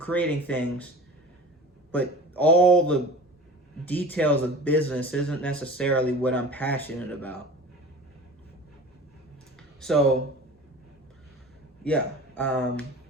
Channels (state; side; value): normal; both; correlation 0.37